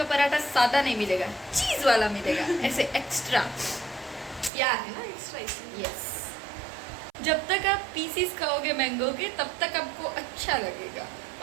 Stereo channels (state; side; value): drops out; left; at 4.5 s